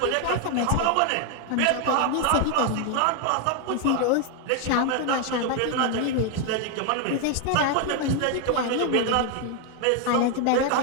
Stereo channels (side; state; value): both; different; correlation 0.00